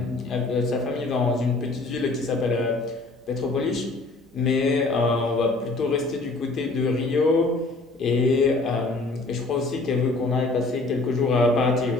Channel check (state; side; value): quieter; right; 3.2 dB